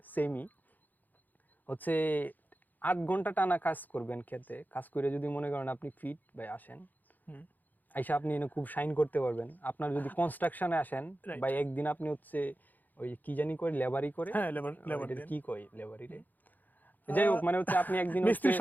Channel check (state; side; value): late; right; 0.084 ms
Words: সেমই হচ্ছে 8 ঘন্টা টানা কাজ করবেন খেতে, কাজ করে যদি মনে করেন আপনি ফিট ভাই আসেন, আইসা আপনি এনে খুব শাইন করতে পারবেন। আপনার যদি কনস্ট্রাকশনে আসেন Right. ভাই, একদিন আপনি হচ্ছে ওই কি জানি করে লেবারি করে, হ্যাঁ লেবার এটার কি কয় লেবারি রে, যাই হোক, মানে হচ্ছে আপনি একদিন হচ্ছে মিস্ত্রির